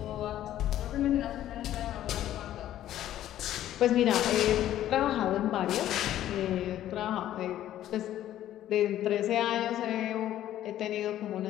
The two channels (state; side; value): quieter; right; 12.5 dB